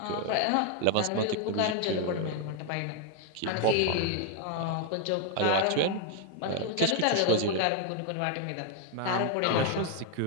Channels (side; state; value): both; different; correlation 0.01